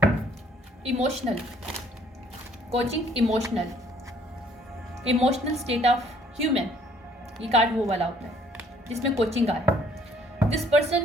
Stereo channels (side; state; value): both; normal; correlation 0.62